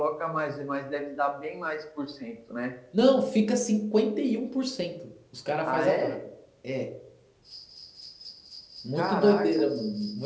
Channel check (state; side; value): identical; both; correlation 1.00